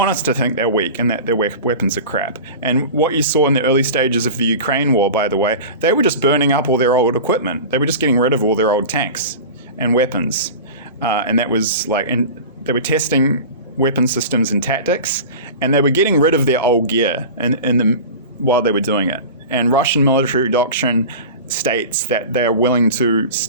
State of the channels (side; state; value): both; inverted; correlation -0.33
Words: us to think they're weak and that their weapons are crap. And what you saw in the early stages of the Ukraine war, by the way, they were just burning up all their old equipment. They were just getting rid of all their old tanks and weapons. And that was and they were testing weapon systems and tactics, and they were getting rid of their old gear while they were doing it. And Russian military doctrine states that they are willing to